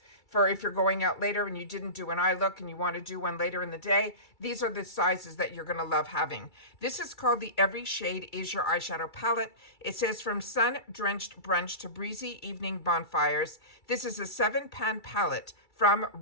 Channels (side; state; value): right; late; 2.3 ms